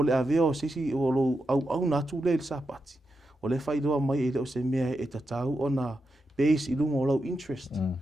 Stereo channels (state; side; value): normal; both; correlation 0.87